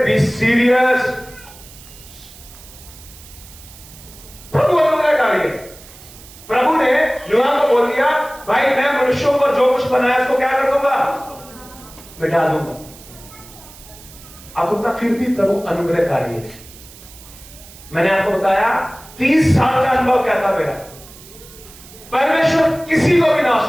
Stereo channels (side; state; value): right; noise; hiss, 20 dB below the sound